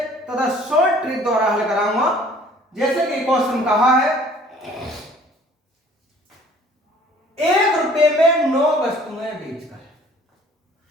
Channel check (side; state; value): both; normal; correlation 0.54